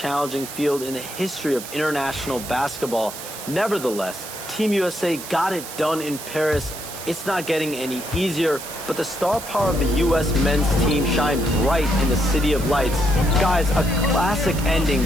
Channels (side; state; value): right; noise; hiss, 11 dB below the sound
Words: field in the history of international basketball. Nevertheless, Team USA got it done in Paris. It's not getting any easier, but the star power of the U.S. men's team shined bright in the City of Lights. Guys, a classic